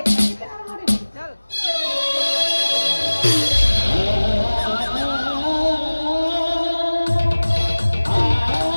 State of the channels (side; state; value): both; inverted; correlation -1.00